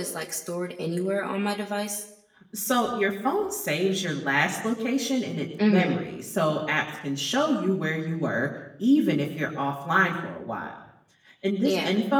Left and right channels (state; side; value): identical; both; correlation 1.00